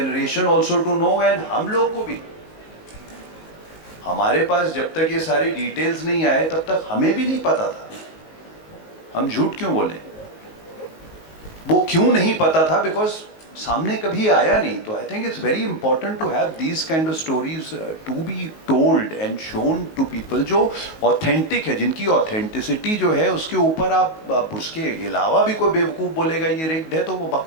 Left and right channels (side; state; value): right; late; 19 ms